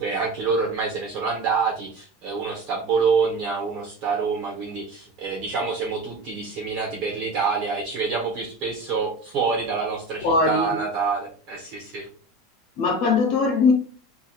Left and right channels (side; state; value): both; normal; correlation 0.31